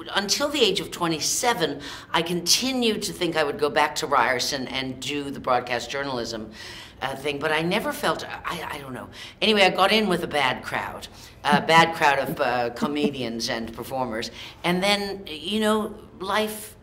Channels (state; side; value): identical; both; correlation 1.00